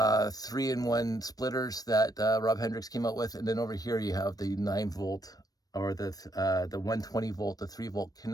splitters that Rob Hendricks came out with. And then over here you have the 9-volt or the 120 volt, the 3-volt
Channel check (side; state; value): right; late; 0.18 ms